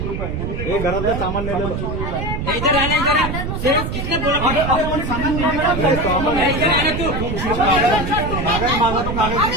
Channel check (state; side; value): noise; right; rumble, 4 dB below the sound